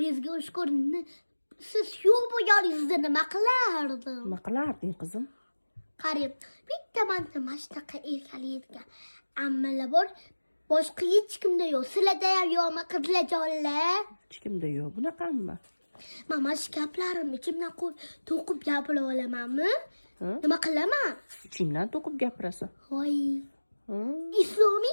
ushkur. Siz yo'q bo'lganingizda nima qilardim? Nima qilarding qizim? Qarang, bitta mana shunaqa erkalaydigan ammalar bor. Boshqa hech kimda yo'q. Sizlarda ham yo'qmi qizlarjonlar? Hech kimda yo'q bunaqami? Mana shu gaplarimni ichimdan to'qib gapira olamanmi? Nima qilaman? Ichingdan to'qib gapirasan. Voy.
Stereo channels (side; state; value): both; inverted; correlation -1.00